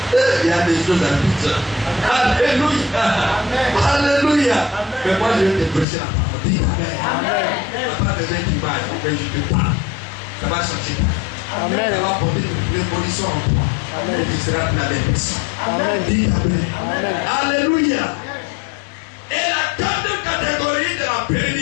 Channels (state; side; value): drops out; right; at 5.9 s